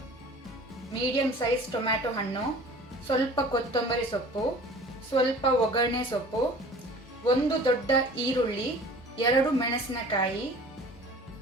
medium size tomato ಹಣ್ಣು, ಸ್ವಲ್ಪ ಕೊತ್ತಂಬರಿ ಸೊಪ್ಪು, ಸ್ವಲ್ಪ ಒಗ್ಗರಣೆ ಸೊಪ್ಪು, 1 ದೊಡ್ಡ ಈರುಳ್ಳಿ, 2 ಮೆಣಸಿನಕಾಯಿ,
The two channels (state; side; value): normal; both; correlation 0.45